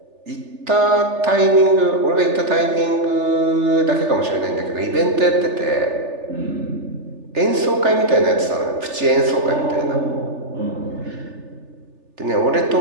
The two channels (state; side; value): late; left; 3.4 ms